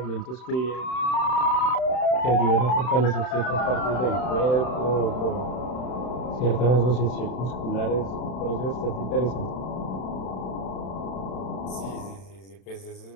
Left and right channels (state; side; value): late; right; 31 ms